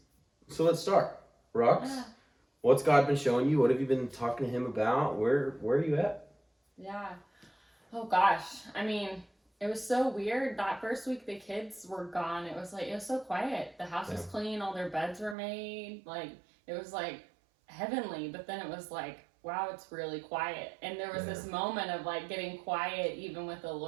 So let's start. Rox, Yeah. what's God been showing you? What have you been talking to Him about? Where are you at? Yeah. Oh gosh. I mean, it was so weird. That first week the kids were gone. It was so quiet. The house was Yeah. clean, all their beds were made. Like it was like heavenly, but then it was like, wow, it's really quiet. And there was this moment of like getting quiet even with the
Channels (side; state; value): left; drops out; at 15.4 s